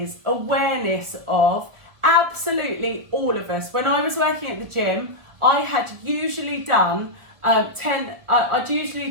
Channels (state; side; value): late; left; 1.7 ms